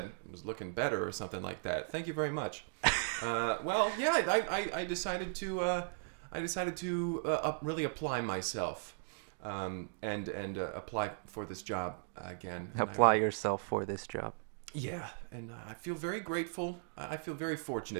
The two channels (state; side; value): silent; left; digital silence